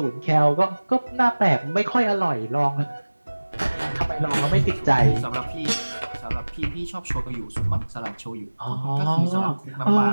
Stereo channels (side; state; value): both; inverted; correlation -1.00